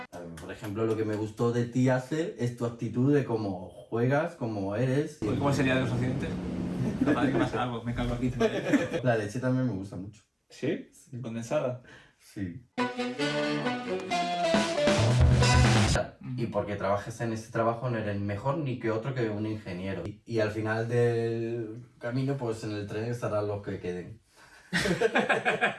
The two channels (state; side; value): identical; both; correlation 1.00